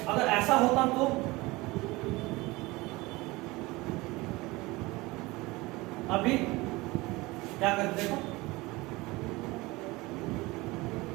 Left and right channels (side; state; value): left; quieter; 21.9 dB